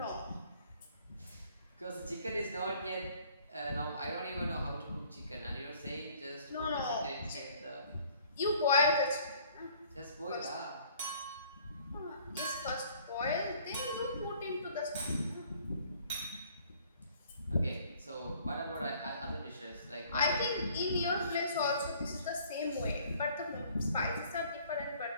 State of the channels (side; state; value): both; inverted; correlation -0.57